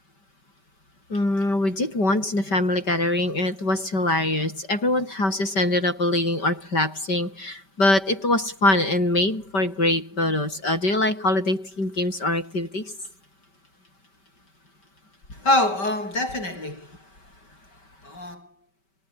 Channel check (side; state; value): right; late; 5.2 ms